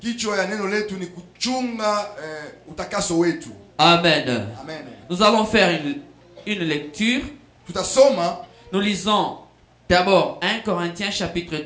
ya neno letu ni kuchunga utakaso wetu. Amen. Amen. Nous allons faire une lecture. Tutasoma, Nous lisons d'abord 1 Corinthiens chapitre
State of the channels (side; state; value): both; identical; correlation 1.00